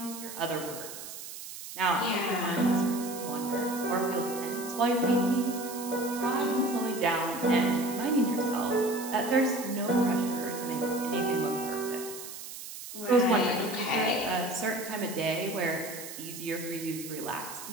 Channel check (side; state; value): right; noise; hiss, 11 dB below the sound